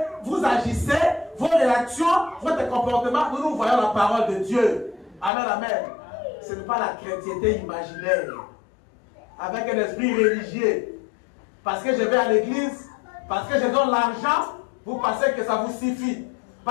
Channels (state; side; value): drops out; right; at 5.3 s